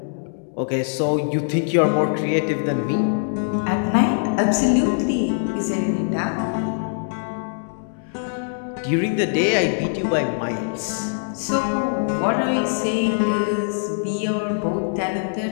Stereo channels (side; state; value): right; silent; digital silence